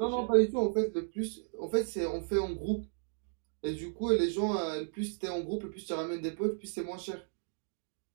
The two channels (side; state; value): left; silent; digital silence